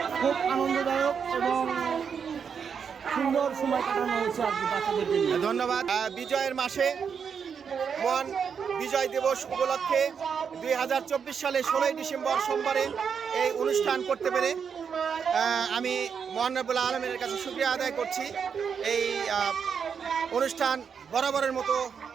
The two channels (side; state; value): left; quieter; 6.7 dB